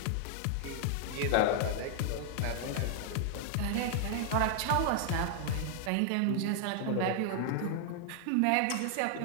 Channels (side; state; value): both; different; correlation 0.00